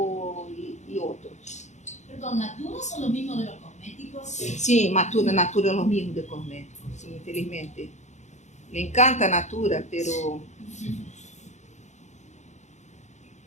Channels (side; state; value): right; late; 0.34 ms